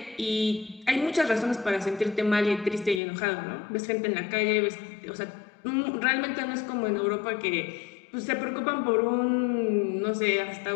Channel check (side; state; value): right; drops out; at 3.0 s